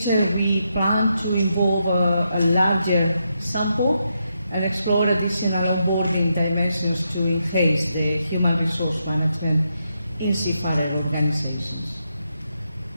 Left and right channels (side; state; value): both; inverted; correlation -0.82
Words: we plan to involve a larger sample and explore additional onboarding dimensions to enhance the human resource management in seafarer organizations.